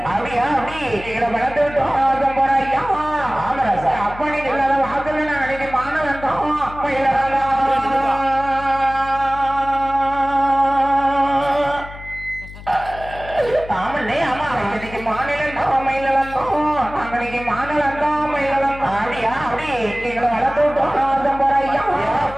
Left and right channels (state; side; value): noise; left; hum, 15 dB below the sound